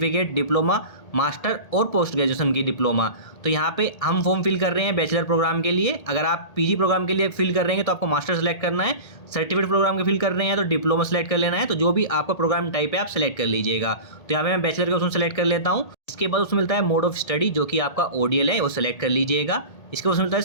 डिप्लोमा, मास्टर और पोस्ट ग्रेजुएशन की डिप्लोमा। तो यहाँ पे हम फॉर्म फिल कर रहे हैं बैचलर प्रोग्राम के लिए। अगर आप पीजी प्रोग्राम के लिए फिल कर रहे हैं तो आपको मास्टर सेलेक्ट करना है। सर्टिफिकेट प्रोग्राम के फिल कर रहे हैं तो डिप्लोमा सेलेक्ट कर लेना है। तो जो भी आपका प्रोग्राम टाइप है आप सेलेक्ट कर लीजिएगा। तो यहाँ पे मैं बैचलर का ऑप्शन सेलेक्ट कर लेता हूँ। इसके बाद उसमें मिलता है मोड ऑफ स्टडी, जो कि आपका ODL है, वो सेलेक्ट कर लीजिएगा। इसके बाद मिलता है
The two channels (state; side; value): late; right; 1.8 ms